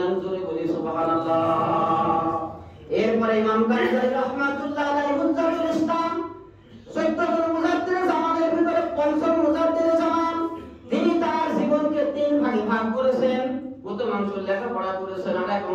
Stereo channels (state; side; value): identical; both; correlation 1.00